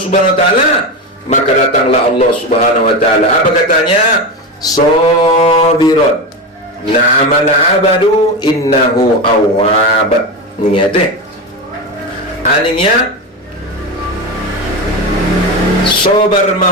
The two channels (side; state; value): both; normal; correlation 0.18